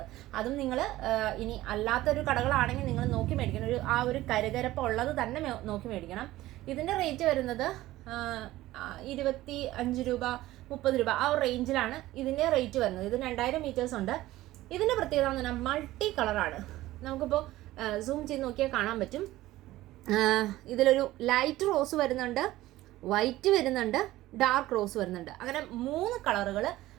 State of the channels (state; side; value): quieter; left; 16.4 dB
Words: അതും നിങ്ങൾ ഇനി അല്ലാത്തൊരു കടകളാണെങ്കിൽ നിങ്ങൾ നോക്കി മേടിക്കണം. ഒരു കരുകരപ്പ് ഉള്ളത് തന്നെ നോക്കി മേടിക്കണം. ഇതിൻ്റെ റേറ്റ് വരുന്നത് 25 രൂപ 30 രൂപ ആ ഒരു റേഞ്ചിലാണ് ഇതിൻ്റെ റേറ്റ് വരുന്നത്. ഇത് 2000 മീറ്റേഴ്സ് ഉണ്ട്. ഇതിൻ്റെ പ്രത്യേകത എന്ന് പറഞ്ഞാൽ മൾട്ടി കളറാണ്. നമുക്കിപ്പോൾ സൂം ചെയ്ത് നോക്കിയാൽ കാണാൻ പറ്റും. ഇതിലൊരു ലൈറ്റ് റോസ് വരുന്നുണ്ട്, വൈറ്റ് വരുന്നുണ്ട്, ഡാർക്ക് റോസ് വരുന്നുണ്ട്. അങ്ങനെ 3 കളറുകൾ